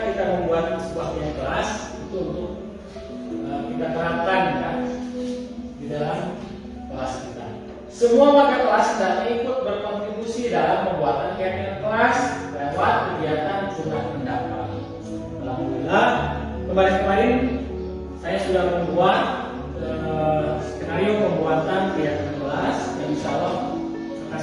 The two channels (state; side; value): identical; both; correlation 1.00